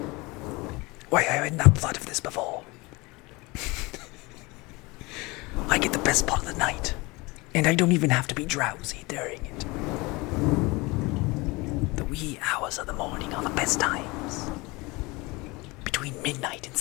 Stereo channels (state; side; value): quieter; right; 24.2 dB